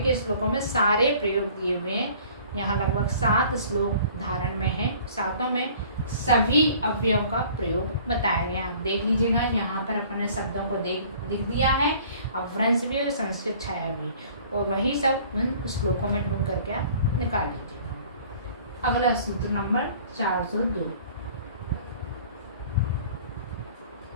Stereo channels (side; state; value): both; inverted; correlation -0.51